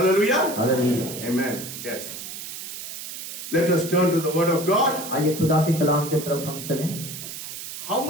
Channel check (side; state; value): right; noise; hiss, 9 dB below the sound